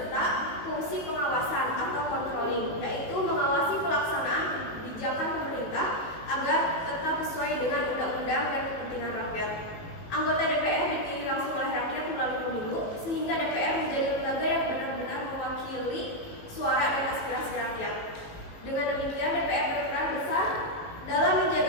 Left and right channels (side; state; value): right; late; 18 ms